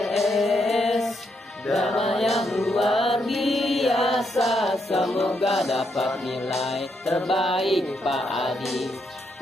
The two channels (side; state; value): both; normal; correlation 0.78